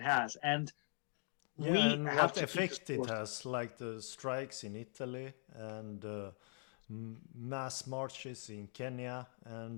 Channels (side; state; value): right; silent; 50 dB below the other